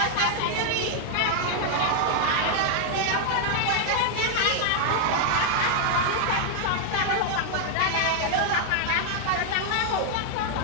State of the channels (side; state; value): both; different; correlation 0.00